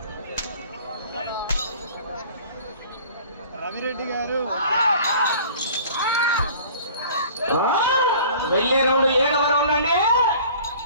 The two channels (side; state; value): both; inverted; correlation -0.47